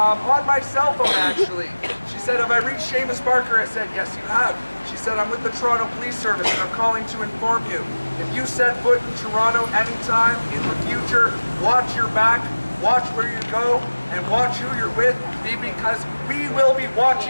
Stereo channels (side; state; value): both; inverted; correlation -1.00